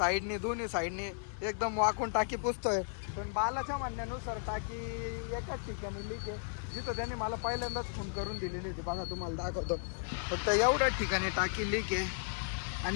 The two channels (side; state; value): right; silent; digital silence